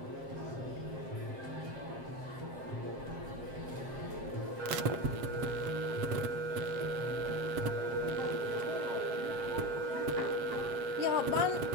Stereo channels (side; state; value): left; late; 7.6 ms